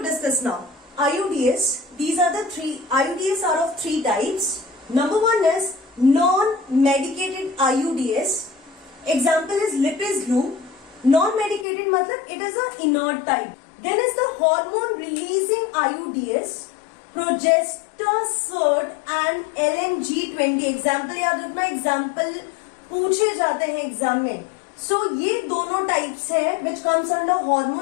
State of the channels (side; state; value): right; drops out; at 11.7 s